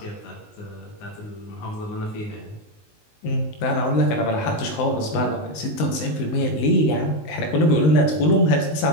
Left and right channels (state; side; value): late; right; 19 ms